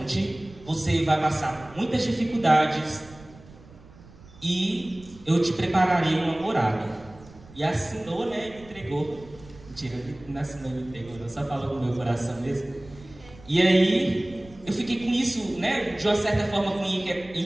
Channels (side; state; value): right; noise; rumble, 21 dB below the sound